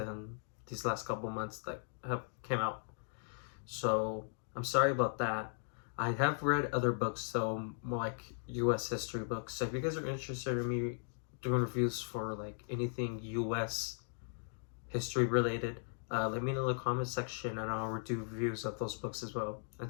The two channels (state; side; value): silent; right; digital silence